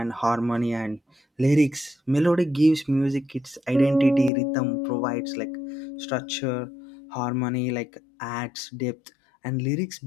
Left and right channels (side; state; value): right; drops out; at 4.3 s